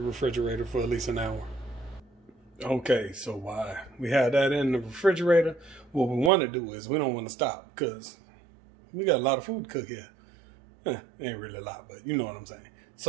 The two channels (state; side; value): drops out; left; at 6.3 s